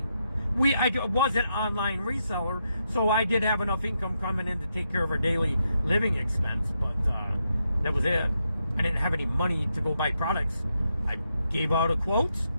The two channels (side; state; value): both; inverted; correlation -0.82